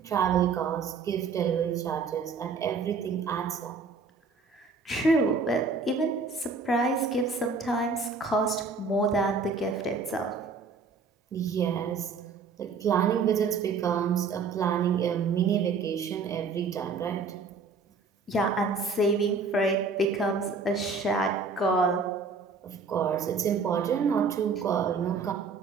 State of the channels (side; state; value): left; quieter; 4.7 dB